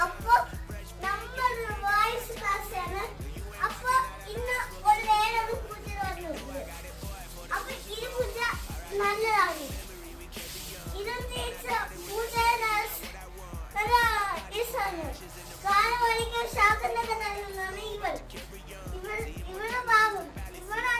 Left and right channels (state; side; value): identical; both; correlation 1.00